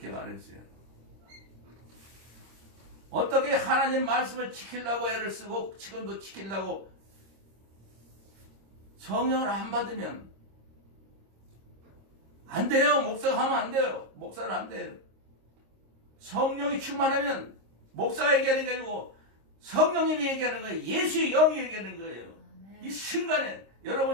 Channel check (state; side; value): late; left; 26 ms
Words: 말했어요. 어떻게 하나님 말씀을 지키려고 애를 쓰고 지금도 지키려고 성령을 안 받으면 안 돼요. 목사가 하면 안 돼요. 목사는 안 돼요. 성령이 충만하면 목사가 얘기하는 게 아니고 성령님이 얘기하는 거예요. 예수의 영이 얘기하는 거예요. 이 순간에